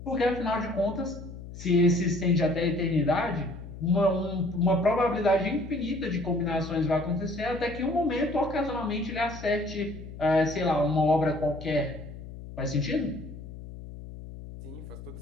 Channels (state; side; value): noise; left; hum, 13 dB below the sound